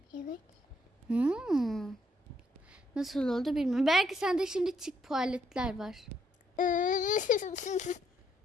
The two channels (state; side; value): normal; both; correlation 0.73